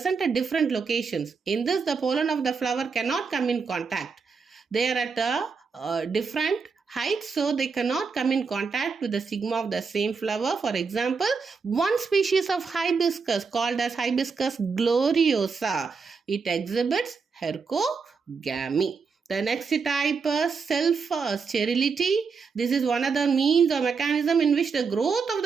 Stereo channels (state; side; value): quieter; left; 5.2 dB